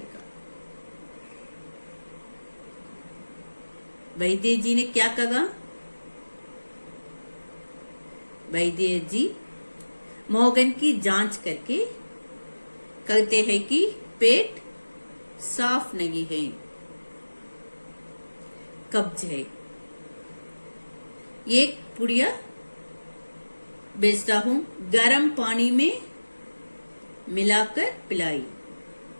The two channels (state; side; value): inverted; both; correlation -1.00